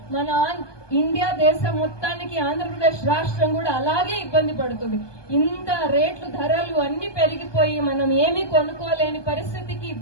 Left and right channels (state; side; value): late; right; 1.2 ms